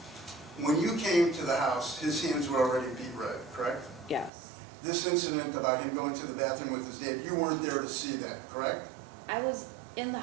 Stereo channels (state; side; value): drops out; left; at 4.3 s